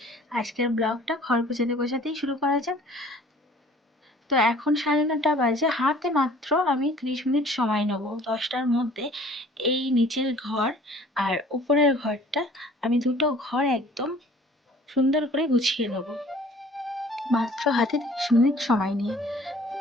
আজকের ব্লগটা ঘর গোছাতে গোছাতেই শুরু করা যাক। তো এখন 9:30 বাজে, হাতে মাত্র আমি 30 মিনিট সময় নেব। 10টার মধ্যে এই নিচের ঘর আর উপরের ঘরটা, আমি দুটো ঘর একদম সুন্দর করে গুছিয়ে নেব মাত্র হাতে 30 মিনিট সময় নিয়ে।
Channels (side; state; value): both; normal; correlation 0.51